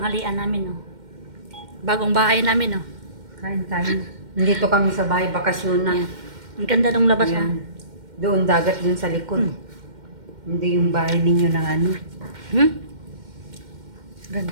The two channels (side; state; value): left; late; 2.1 ms